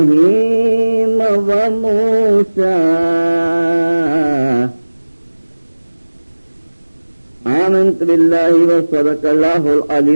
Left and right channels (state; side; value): inverted; both; correlation -1.00